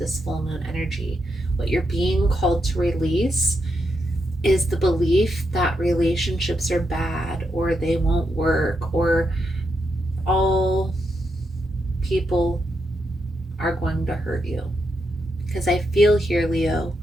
full moon energy, what you're being called to release is the belief that relationships are bad or they won't work or all people are going to hurt you. Because I feel here, Leo,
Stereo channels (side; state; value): both; normal; correlation 0.83